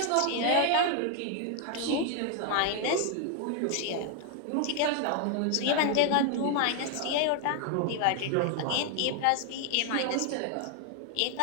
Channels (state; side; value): different; both; correlation 0.00